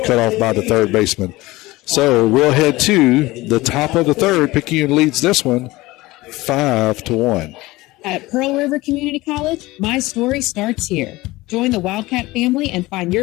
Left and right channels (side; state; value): right; quieter; 19.8 dB